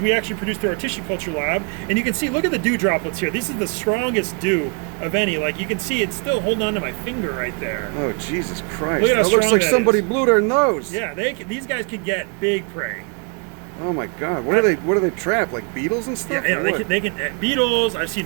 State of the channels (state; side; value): quieter; left; 35.3 dB